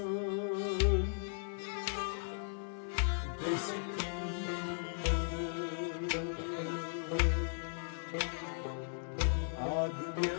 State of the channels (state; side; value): silent; right; digital silence